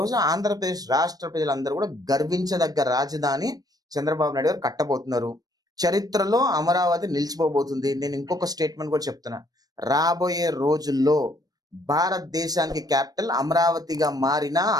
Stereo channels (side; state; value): left; late; 0.19 ms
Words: ఆంధ్రప్రదేశ్ రాష్ట్ర ప్రజలందరూ కూడా గర్వించదగ్గ రాజధాని చంద్రబాబు నాయుడు గారు కట్టబోతున్నారు. చరిత్రలో అమరావతి నిలిచిపోబోతుంది. నేను ఇంకొక స్టేట్మెంట్ కూడా చెప్తున్నా. రాబోయే రోజుల్లో భారతదేశానికి క్యాపిటల్ అమరావతిగా మారినా